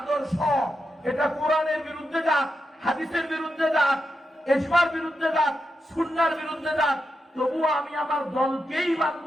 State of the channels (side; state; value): both; normal; correlation 0.87